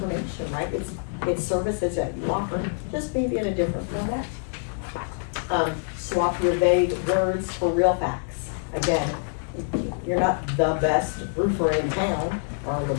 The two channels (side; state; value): right; silent; 61 dB below the other